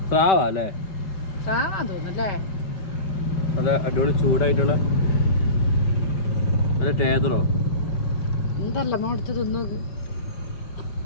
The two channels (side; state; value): right; late; 5.1 ms